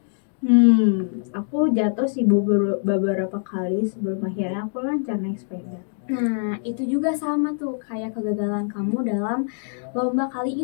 Aku jatuh sih Bu beberapa kali sebelum akhirnya aku lancar naik sepeda. Nah, itu juga sama tuh kayak kegagalan kamu dalam lomba kali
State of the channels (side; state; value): right; silent; digital silence